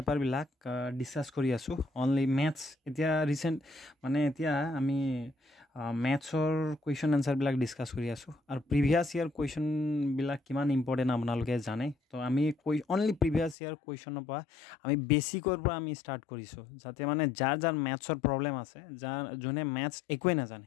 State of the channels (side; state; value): right; drops out; at 13.6 s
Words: ডিছকাছ কৰি আছোঁ। অনলি মেথছ এতিয়া ৰিচেণ্ট এতিয়া আমি মেথছৰ কুৱেশ্যন এনচাৰবিলাক ডিছকাছ কৰি আছোঁ। আৰু প্ৰিভিয়াছ ইয়াৰ কুৱেশ্যনবিলাক কিমান ইম্পৰ্টেণ্ট আপোনালোকে জানে। তো আমি অনলি প্ৰিভিয়াছ ইয়াৰ কুৱেশ্যনৰ পৰা আমি বেছিকৰ পৰা আমি ষ্টাৰ্ট কৰিছোঁ, যাতে যাৰ মেথছৰ প্ৰব্লেম আছে, যোনে মেথছ একোৱে নাজানে,